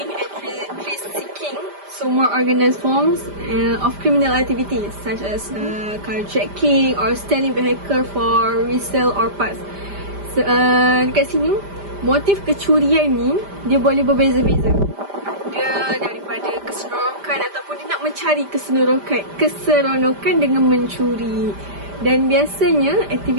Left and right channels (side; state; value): left; late; 5.0 ms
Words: and thrill-seeking, so more organized forms of criminal activities such as carjacking or stealing vehicle for resale or parts. Dekat sini motif kecurian ni dia boleh berbeza-beza. Dia daripada keseronokan ataupun dia nak mencari keseronokan dengan mencuri. Dan biasanya